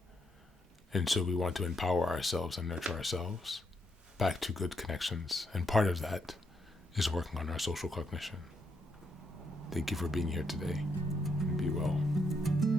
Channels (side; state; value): both; normal; correlation 0.78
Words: And so we want to empower ourselves and nurture ourselves back to good connections. And part of that is working on our social cognition. Thank you for being here today. And be well.